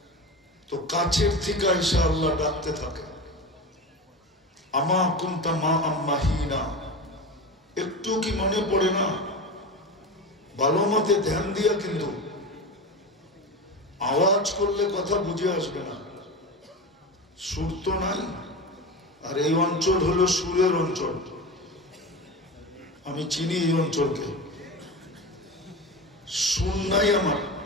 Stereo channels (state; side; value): normal; both; correlation 0.26